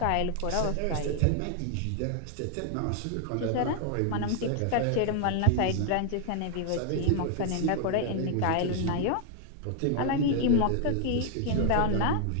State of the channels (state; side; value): different; both; correlation 0.00